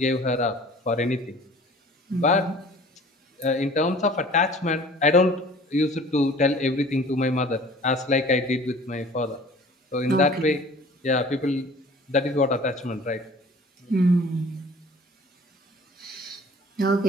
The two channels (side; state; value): both; normal; correlation 0.47